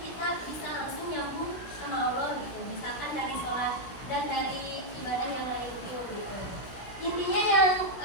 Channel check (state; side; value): late; right; 16 ms